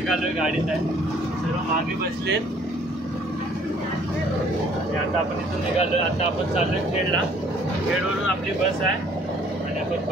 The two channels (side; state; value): both; normal; correlation 0.58